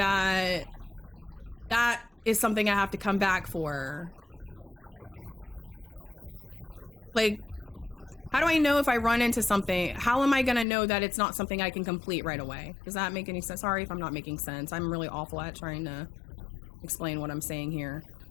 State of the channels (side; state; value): right; drops out; at 10.7 s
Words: that is something I have to come back for? Like, how do I know if I run into something? How am I going to know that it's not something I can complete right away? Does that make any sense? Sorry if I'm not making sense. I'm really awful at trying to explain what I'm saying here.